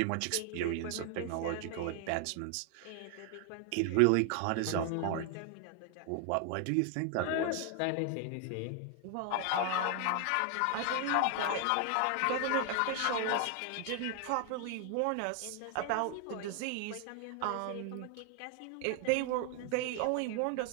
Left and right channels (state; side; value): different; both; correlation 0.00